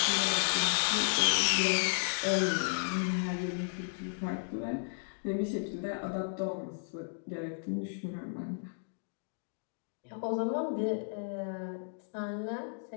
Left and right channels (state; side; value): silent; right; digital silence